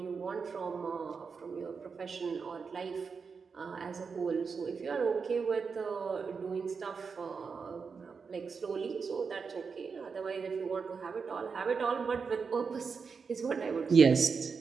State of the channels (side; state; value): left; quieter; 5.4 dB